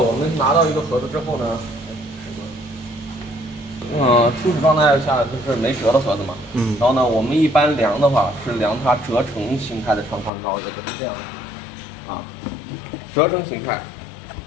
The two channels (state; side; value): drops out; right; at 10.3 s